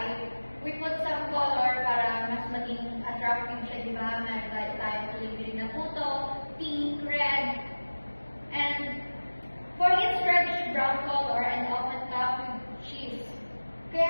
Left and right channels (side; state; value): both; inverted; correlation -1.00